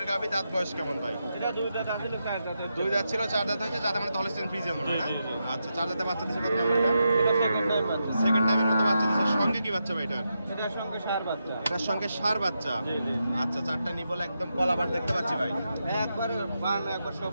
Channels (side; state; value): both; inverted; correlation -0.85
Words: গাবি। দাঁত বয়স কেমন ভাই? এটা 2 দাঁত আসলে 4 দাঁতের। 2 দাঁত ছিল, 4 দাঁত হয়েছে। যাতে মানে হলিস্টিয়ান ফ্রিজিয়ান মনে হয় না? জি, জি, জি। আচ্ছা 4 দাঁতে বাচ্চা দিছে কত নাম্বার এটা? এটা সেকেন্ড টাইম বাচ্চা। সেকেন্ড টাইমের মতো বাচ্চা দিছে। সঙ্গে কি বাচ্চা ভাই এটার? এটার সঙ্গে সার বাচ্চা। এটার সঙ্গে ষাঁড় বাচ্চা। জি, জি। আচ্ছা 4টা নিবল একদম কলাবার দেখতে পাচ্ছি ভাই। একবার বান একবার